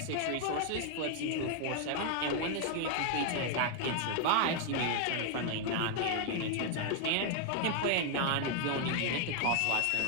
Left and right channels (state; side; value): different; both; correlation 0.00